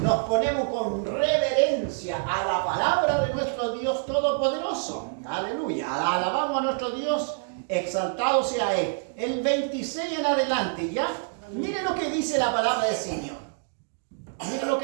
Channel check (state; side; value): silent; left; digital silence